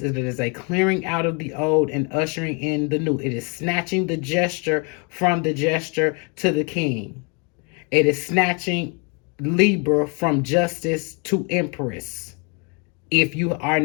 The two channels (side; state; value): right; quieter; 34.0 dB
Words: it is a clearing out of the old and ushering in the new. It is snatching the gesture from the gesture to the king. It is snatching Libra from justice to Empress, if you are